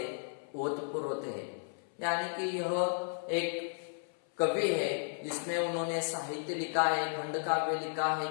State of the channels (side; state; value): right; silent; 55 dB below the other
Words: ओतप्रोत है। यानी कि यह एक कवि है जिसमें उन्होंने साहित्य लिखा है, खंड काव्य लिखा है,